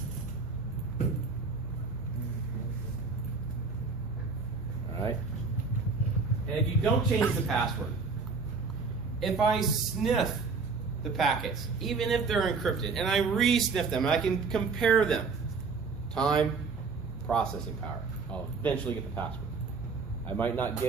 All right? And if you don't change the password, if I sniff the packets, even if they're encrypted, and I re-sniff them, and I can compare them, time, processing power, I'll eventually get the password. I might not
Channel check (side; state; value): left; quieter; 4.6 dB